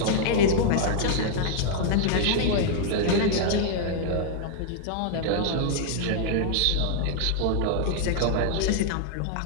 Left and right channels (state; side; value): different; both; correlation -0.01